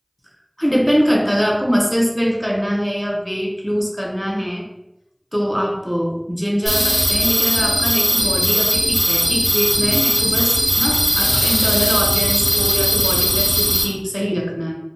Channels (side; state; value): both; identical; correlation 1.00